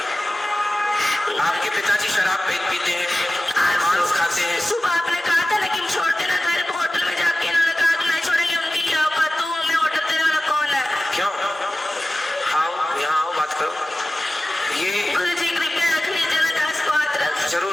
आपके पिताजी शराब पीते हैं, मांस खाते हैं। सुबह आपने कहा था लेकिन छोड़ देना घर को, होटल में जाके इन्होंने कहा कि नहीं छोड़ेंगे। उनकी क्या औकात, तू हमें ऑर्डर देने वाला कौन है? क्यों? आओ यहाँ आओ, बात करो। ये गुरु जी कृपया रख लीजिए ना, 10 को हाथ रख।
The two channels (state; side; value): normal; both; correlation 0.96